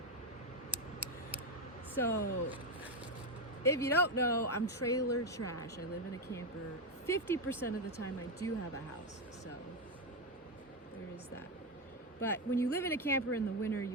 So, if you don't know, I'm trailer trash. I live in a camper. 50% of the time I do have a house, so there is that. But when you live in a camper in the winter,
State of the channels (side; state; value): both; normal; correlation 0.08